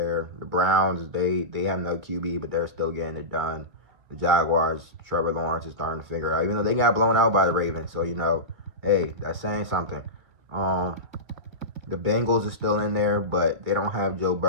The Browns, they have no QB, but they're still getting it done. The Jaguars, Trevor Lawrence is starting to figure it out, even though they got blown out by the Ravens. So, hey, that's saying something. The Bengals are still in there, but they don't have Joe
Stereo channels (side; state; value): left; late; 2.2 ms